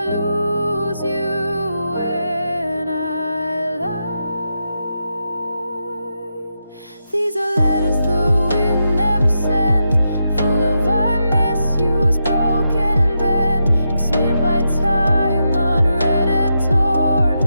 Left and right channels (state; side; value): inverted; both; correlation -0.85